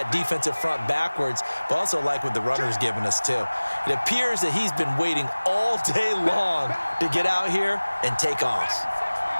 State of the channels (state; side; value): inverted; both; correlation -1.00